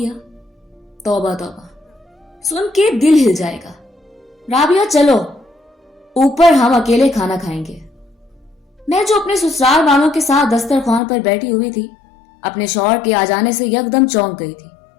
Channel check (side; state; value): right; drops out; at 11.0 s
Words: तौबा तौबा, सुन के दिल हिल जाएगा। राबिया चलो ऊपर, हम अकेले खाना खाएंगे। मैं जो अपने ससुराल वालों के साथ दस्तरखान पर बैठी हुई थी, अपने शौहर के आ जाने से यकदम चौंक गई थी